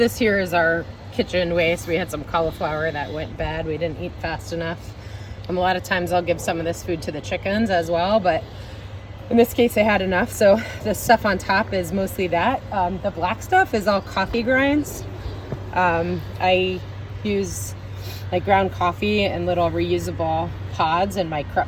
here is our kitchen waste. We had some cauliflower that went bad. We didn't eat fast enough. A lot of times I'll give some of this food to the chickens as well, but in this case I had enough. So the stuff on top is mostly that. The black stuff is all coffee grinds. I use like ground coffee and little reusable pods in my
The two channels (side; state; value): both; identical; correlation 1.00